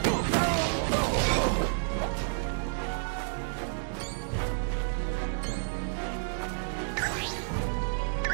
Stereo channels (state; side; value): silent; left; 57 dB below the other